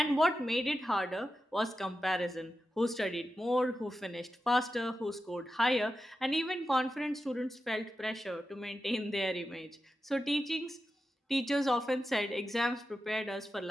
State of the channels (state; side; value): normal; both; correlation 0.91